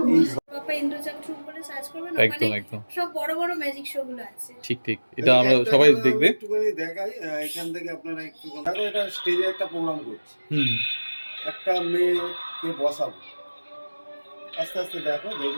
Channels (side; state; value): both; inverted; correlation -1.00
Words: এই বাবা ইন্দ্রচন্দ্র বলে সার্চ করবেন, একদম একদম সব বড় বড় ম্যাজিক শো গুলো আছে। ঠিক ঠিক, এটা আমরা সবাই দেখবে। একটুখানি দেখাই, এখান থেকে আপনারা একটু দেখো, এটা স্টেজে একটা প্রোগ্রাম করছি, একটা মেয়েকে বসাবো। আস্তে আস্তে দেখো,